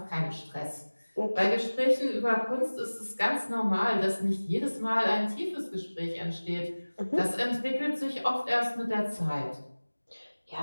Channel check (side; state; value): both; inverted; correlation -1.00